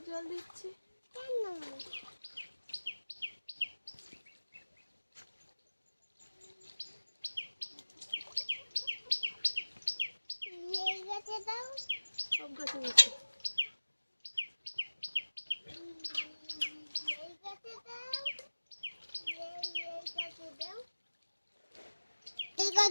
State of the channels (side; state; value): both; inverted; correlation -1.00